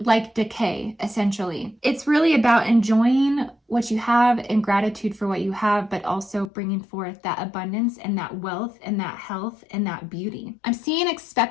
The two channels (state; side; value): drops out; right; at 6.5 s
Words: like decay, essentially. It's really about enjoying what you have and gratitude for what you have, but also bringing forth that abundance and that wealth and that health and that beauty. I'm seeing